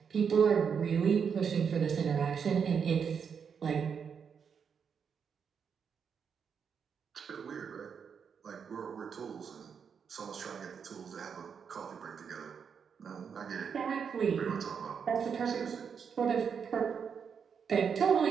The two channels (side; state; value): left; quieter; 6.8 dB